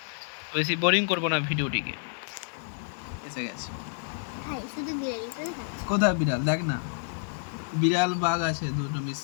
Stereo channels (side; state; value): right; silent; digital silence